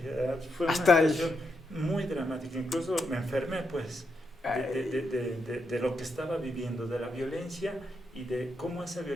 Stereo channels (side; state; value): both; normal; correlation 0.81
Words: fue una hasta situación muy dramática, incluso me enfermé pues de lo que estaba viviendo, de la violencia y de cómo esa